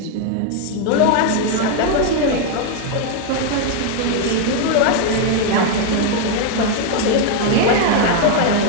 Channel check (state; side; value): different; both; correlation 0.00